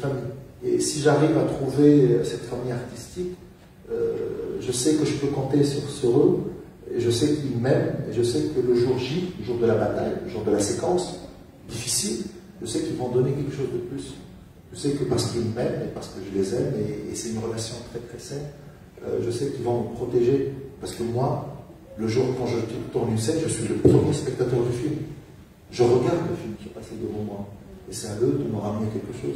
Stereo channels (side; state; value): both; identical; correlation 1.00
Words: Et si j'arrive à trouver cette famille artistique, je sais que je peux compter sur eux, et je sais qu'ils m'aiment, et je sais que le jour J, le jour de la bataille, le jour de la séquence difficile, je sais qu'ils vont donner quelque chose de plus. Je sais que parce qu'ils m'aiment et parce que je les aime, et c'est une relation très très saine, je sais qu'ils vont me protéger. Parce que moi, le jour quand je tourne une scène, je suis le premier spectateur du film. Je regarde le film qui est passé devant moi. Et c'est à eux de me ramener quelque chose.